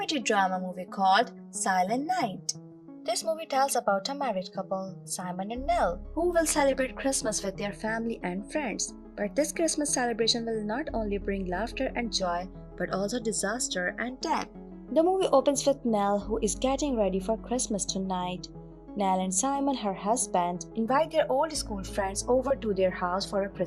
drama movie called Silent Night. This movie tells about a married couple, Simon and Nell, who will celebrate Christmas with their family and friends. But this Christmas celebration will not only bring laughter and joy, but also disaster and death. The movie opens with Nell, who is getting ready for Christmas tonight. Nell and Simon, her husband, invite their old school friends over to their house for a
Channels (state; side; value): identical; both; correlation 1.00